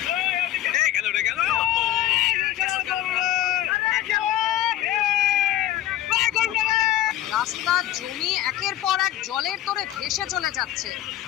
রাস্তা, জমি একের পর এক জলের তোড়ে ভেসে চলে যাচ্ছে।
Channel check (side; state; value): right; quieter; 13.3 dB